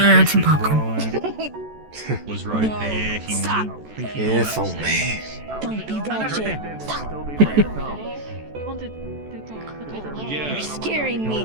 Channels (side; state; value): left; late; 14 ms